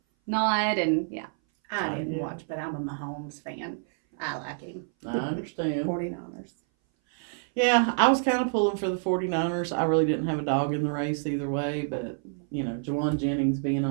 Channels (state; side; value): silent; left; 58 dB below the other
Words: nod and yeah. I didn't watch, but I'm a Mahomes fan. I like him. I understand. 49ers. Yeah, I was kind of pulling for the 49ers. I really didn't have a dog in the race either way, but, Jawan Jennings being